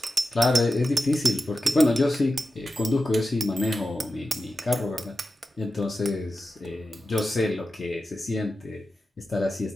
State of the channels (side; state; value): both; normal; correlation 0.91